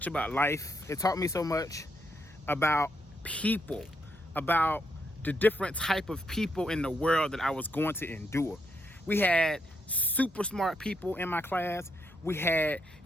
about life. It taught me so much about people, about the different type of people in the world that I was going to endure. We had super smart people in my class. We had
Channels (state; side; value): normal; both; correlation 0.79